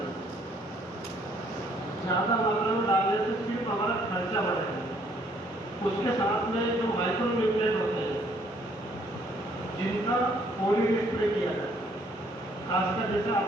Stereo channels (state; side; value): normal; both; correlation 0.64